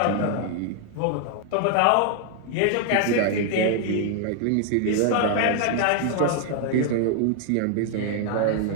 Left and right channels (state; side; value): different; both; correlation 0.00